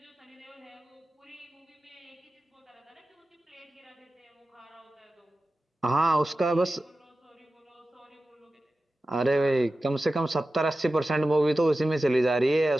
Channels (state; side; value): normal; both; correlation 0.94